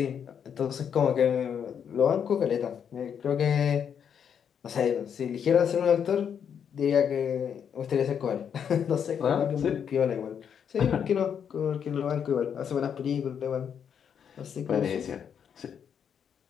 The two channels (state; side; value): quieter; right; 7.9 dB